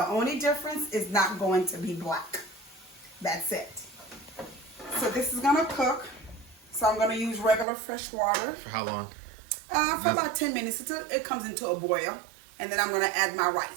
only difference is not going to be black. That's it. So this is going to cook. So I'm going to use regular fresh water. For how long? For about 10 minutes until it comes into a boil. And then I'm going to add my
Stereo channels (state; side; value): drops out; left; at 7.7 s